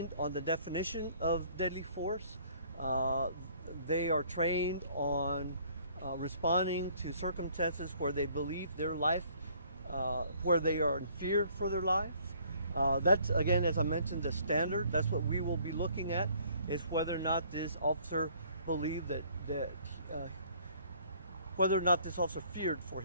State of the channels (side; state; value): both; inverted; correlation -0.59